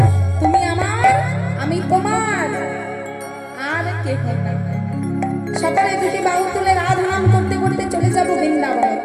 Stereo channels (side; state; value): both; identical; correlation 1.00